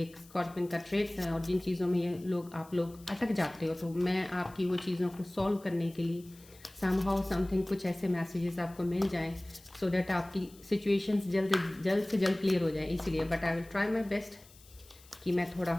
स्कॉर्पियन का ट्रेड्स हैं और जिन चीज़ों में ये आप लोग अटक जाते हो, तो मैं आपकी वो चीज़ों को सॉल्व करने के लिए समहाउ समथिंग कुछ ऐसे मैसेजेस आपको मिल जाएं सो दैट आपकी सिचुएशंस जल्द से जल्द क्लियर हो जाए। इसीलिए but I will try my best कि मैं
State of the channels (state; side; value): noise; left; hiss, 24 dB below the sound